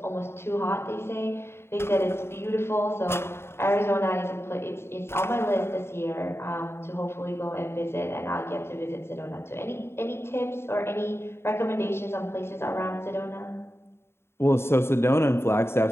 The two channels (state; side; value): late; right; 0.12 ms